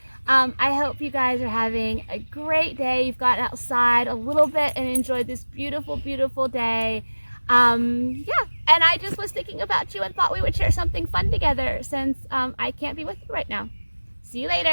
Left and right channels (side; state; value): both; inverted; correlation -1.00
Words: I hope you guys are having a great day. You've gotten outside a little bit and enjoyed this beautiful, beautiful day. And I just was thinking about you and thought we would share something fun together since I can't be with you right now. See you